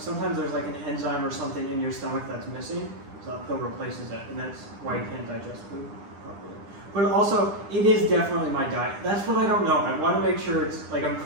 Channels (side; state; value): left; late; 9.9 ms